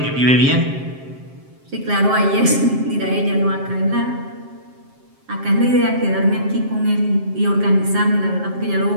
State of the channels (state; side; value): late; left; 7.5 ms